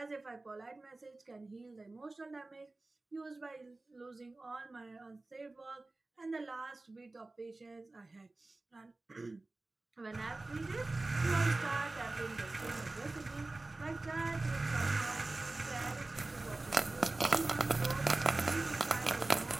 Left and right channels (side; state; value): left; quieter; 3.1 dB